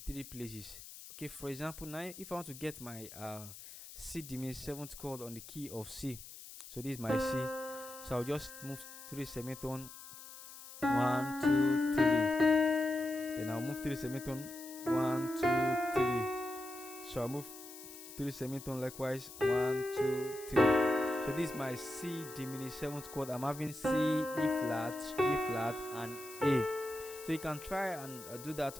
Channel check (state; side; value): noise; left; hiss, 14 dB below the sound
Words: 3 places. Okay, for example, now if I want to get my C diminished seventh chord on the key of C, so this is my C, so I'll just move 3 semitone, 1 2 3, then I'll move 3 semitone, 1 2 3, so I'll move 3 semitone likewise, 1 2 3. So this is my C diminished seventh chord. I'm having C, E flat, G flat, and A. So you can try and do that